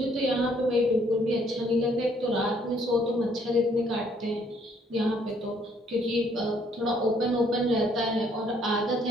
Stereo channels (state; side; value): normal; both; correlation 0.65